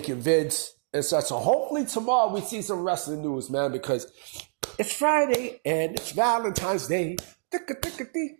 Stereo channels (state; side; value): silent; left; digital silence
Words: vids. and such. So hopefully tomorrow we see some wrestling news, man, because it's Friday and it's Valentine's Day.